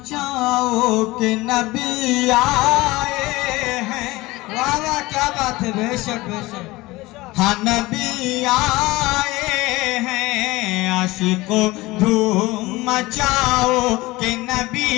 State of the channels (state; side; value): quieter; right; 20.4 dB